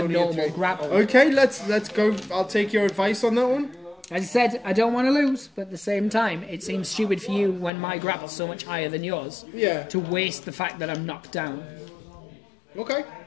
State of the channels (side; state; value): right; drops out; at 7.7 s